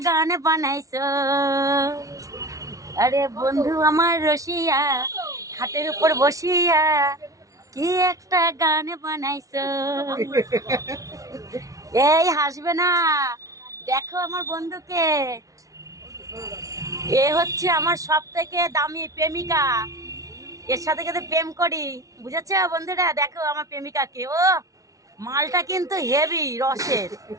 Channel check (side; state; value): left; late; 0.17 ms